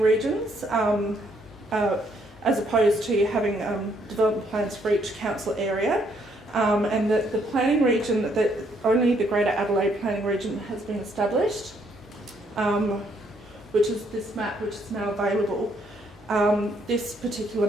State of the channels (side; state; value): both; normal; correlation 0.70